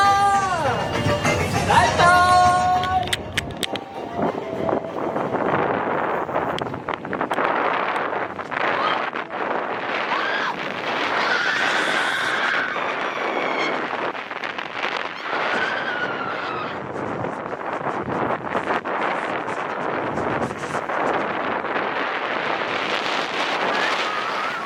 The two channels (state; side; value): identical; both; correlation 1.00